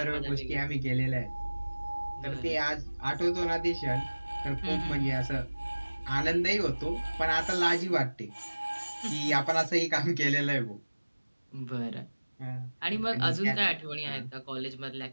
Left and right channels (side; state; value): both; inverted; correlation -1.00